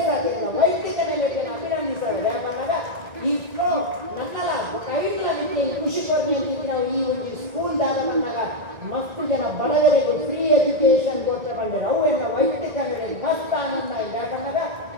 ಆಗಿಲ್ಲ ವೈದ್ಯಕ ನೆಲೆಯನ್ನು ಅಭಿನಂದಿಸ್ತಾರೆ ಯಾವಾಗ ಈ ಫ್ಲೋ ನನ್ನಲ್ಲ ಕೈಟ್ಲ ನಿಮಗೆ ಖುಷಿ ಕೊಡ್ಲಿ ಅಂತ ನಾವು ಈ ಒಂದು ಸ್ಕೂಲ್ದಾಗ ಬಂದಾಗ ಮಸ್ತ್ ಜನ ಬಡವರಿಗೆ ಫ್ರೀ ಎಜುಕೇಶನ್ ಕೊಡ್ತಾ ಬಂದಿರೋ ಅವು ಎಲ್ಲ ವೈದ್ಯಕ ನೆಲೆ ಮಸ್ತ್ ಆನಂದ ಇದೆ ಬಂದಾಗ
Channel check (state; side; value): late; left; 1.9 ms